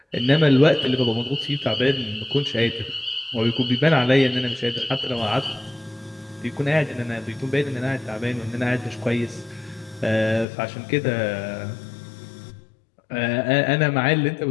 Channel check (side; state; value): right; drops out; at 10.5 s